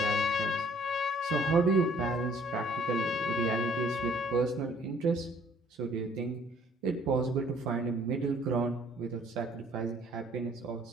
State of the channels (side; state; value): both; normal; correlation 0.59